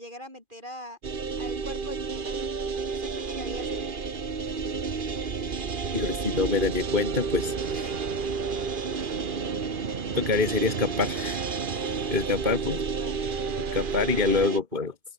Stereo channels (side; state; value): left; late; 2.5 ms